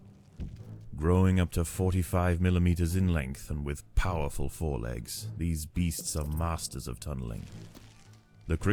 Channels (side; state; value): both; identical; correlation 1.00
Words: Growing up to 45 millimeters in length and with powerful forelegs, these beasts are masters of tunneling. The